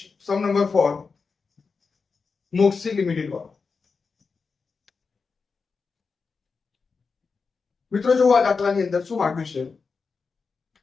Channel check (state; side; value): quieter; right; 4.9 dB